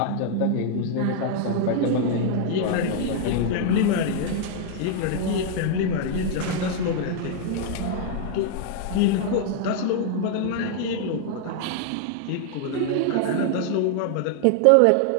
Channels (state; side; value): different; both; correlation 0.00